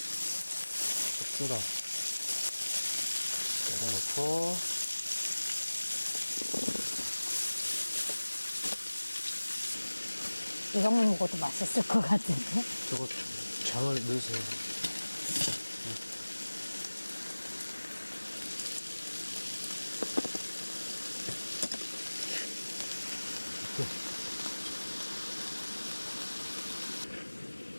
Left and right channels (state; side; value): inverted; both; correlation -1.00